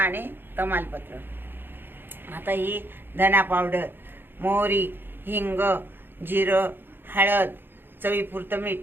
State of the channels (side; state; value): left; late; 0.10 ms